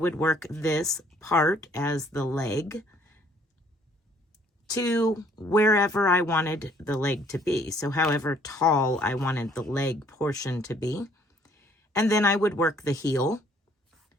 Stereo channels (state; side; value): normal; both; correlation 0.62